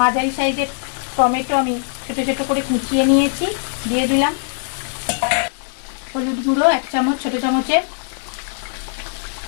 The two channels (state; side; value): silent; right; digital silence